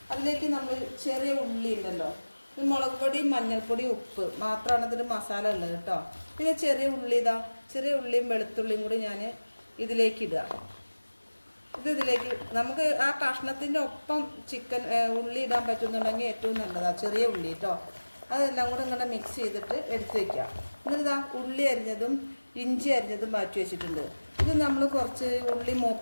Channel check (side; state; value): both; inverted; correlation -1.00